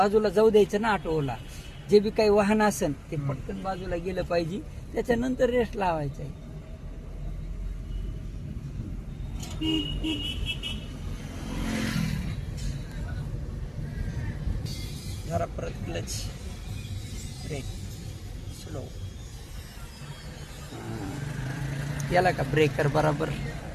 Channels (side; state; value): both; identical; correlation 1.00